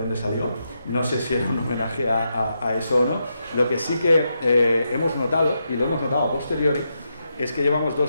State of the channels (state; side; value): inverted; both; correlation -0.84